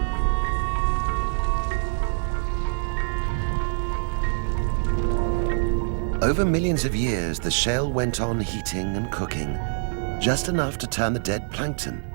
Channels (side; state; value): left; silent; digital silence